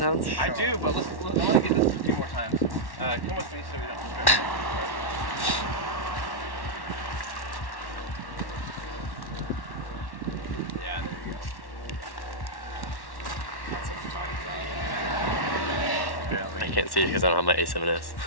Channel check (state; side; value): late; right; 1.1 ms